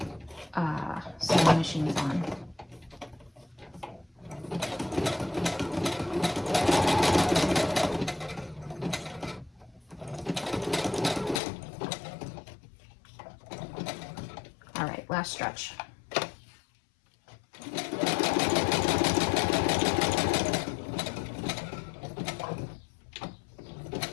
sewing machine's on. All right, last stretch.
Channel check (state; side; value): drops out; right; at 11.4 s